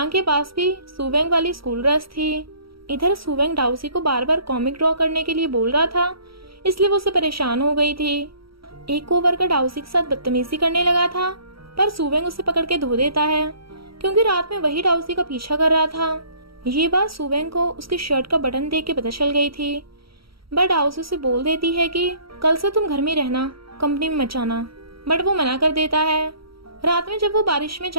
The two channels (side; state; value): left; late; 0.75 ms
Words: के पास भी सुवेंग वाली स्कूल ड्रेस थी। इधर सुवेंग दाओसी को बार बार कॉमिक ड्रॉ करने के लिए बोल रहा था, इसलिए वो उससे परेशान हो गई थी। एक कोवर्कर दाओसी के साथ बदतमीजी करने लगा था, पर सुवेंग उसे पकड़ के धो देता है, क्योंकि रात में वही दाओसी का पीछा कर रहा था। ये बात सुवेंग को उसकी शर्ट का बटन देख के पता चल गई थी। बट दाओसी उसे बोल देती है कि कल से तुम घर में रहना, कंपनी में मत जाना। बट वो मना कर देता है। रात में जब वो बारिश में